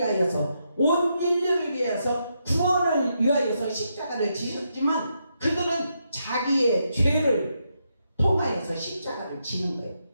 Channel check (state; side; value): inverted; both; correlation -0.81